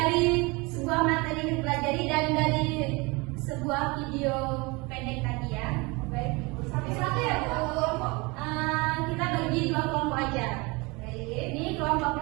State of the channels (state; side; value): quieter; left; 26.0 dB